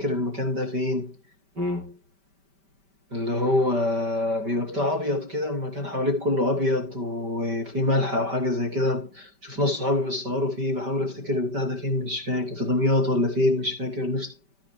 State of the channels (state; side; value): late; left; 5.1 ms